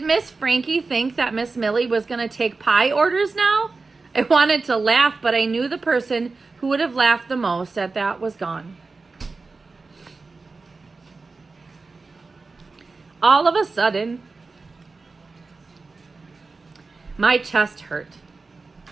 Miss Frankie think that Miss Millie was going to take pie orders now? I wanted to laugh, but I knew the person who would have laughed the most at that was gone. All of a sudden, my chest hurt.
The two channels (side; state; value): left; quieter; 3.9 dB